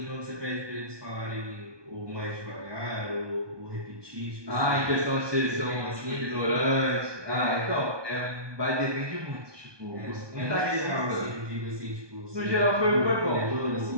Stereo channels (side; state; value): left; late; 1.2 ms